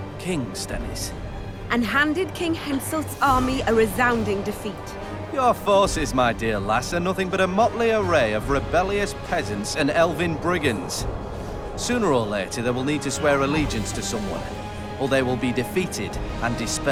King Stennis? And handed King Henselt's army a resounding defeat. Your forces, my dear lass, are nothing but a motley array of rebellious peasants and elven brigands. Sooner or later, they will need to swear allegiance to someone, or they will be defeated and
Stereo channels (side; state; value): both; identical; correlation 1.00